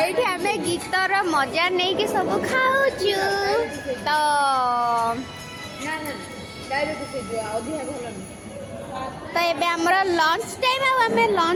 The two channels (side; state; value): both; identical; correlation 1.00